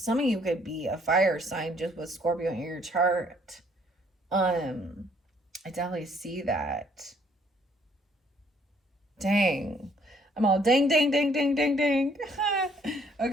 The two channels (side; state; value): both; normal; correlation 0.64